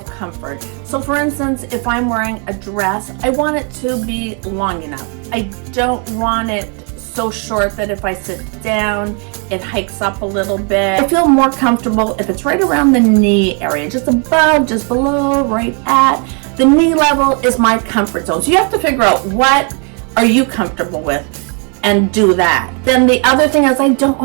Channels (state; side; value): quieter; left; 37.8 dB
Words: comfort. So for instance, if I'm wearing a dress, I want it to be long enough. I don't want it so short that if I sit down, it hikes up a little bit. I feel more comfortable if it's right around the knee area, just above, just below, right at. The knee level is my comfort zone. So you have to figure out what are you comfortable with and do that. Then the other thing is I don't